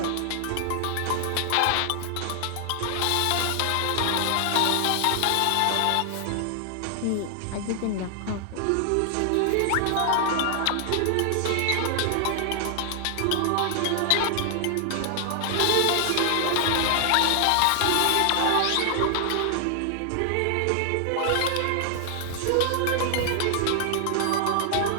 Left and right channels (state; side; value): different; both; correlation 0.00